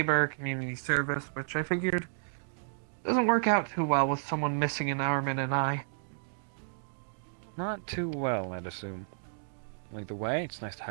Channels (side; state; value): left; silent; digital silence